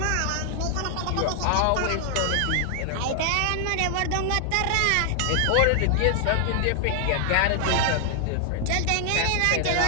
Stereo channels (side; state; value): both; different; correlation 0.00